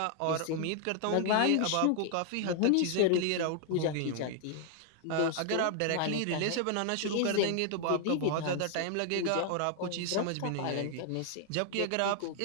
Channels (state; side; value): different; both; correlation 0.00